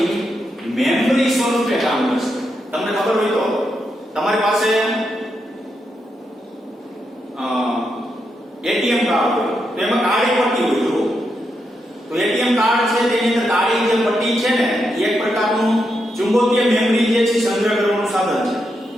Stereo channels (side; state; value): both; normal; correlation 0.83